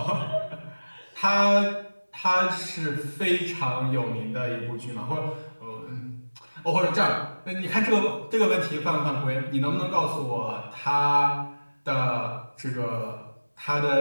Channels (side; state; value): both; inverted; correlation -1.00